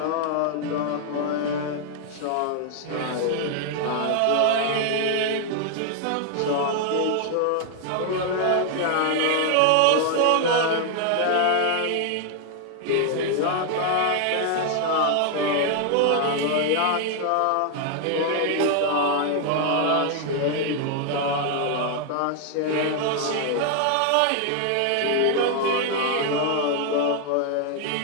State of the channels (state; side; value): different; both; correlation 0.00